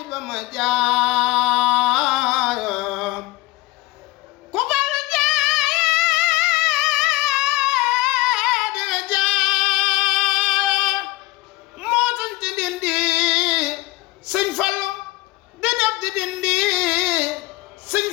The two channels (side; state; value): right; quieter; 20.2 dB